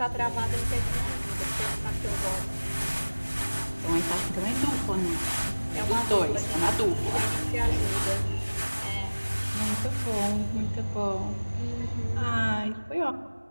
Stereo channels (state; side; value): inverted; both; correlation -1.00